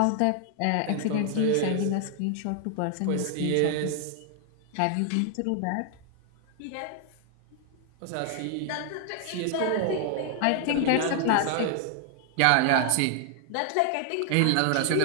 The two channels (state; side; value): different; both; correlation 0.00